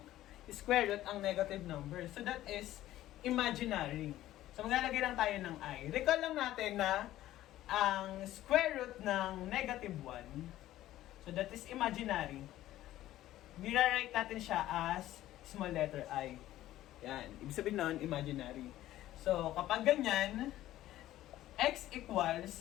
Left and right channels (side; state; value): right; quieter; 14.3 dB